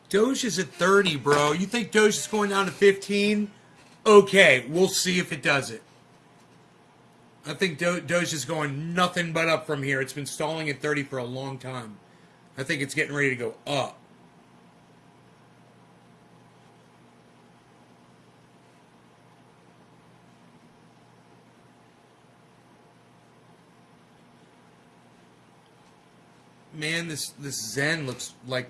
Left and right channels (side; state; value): both; identical; correlation 1.00